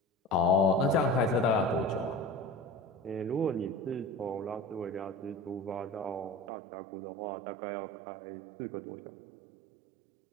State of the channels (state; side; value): drops out; left; at 6.5 s